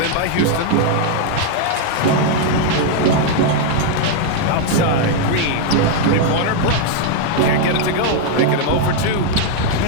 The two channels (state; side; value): different; both; correlation 0.00